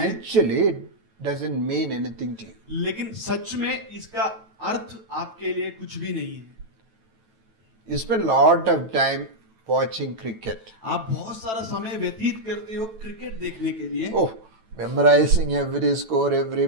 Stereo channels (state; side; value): late; left; 9.1 ms